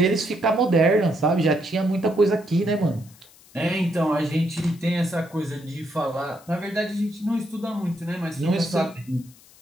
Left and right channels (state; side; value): noise; left; hiss, 25 dB below the sound